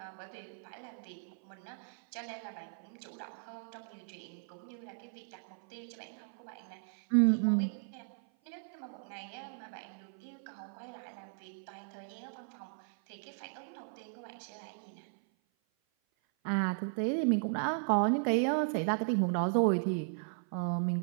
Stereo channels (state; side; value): silent; left; 53 dB below the other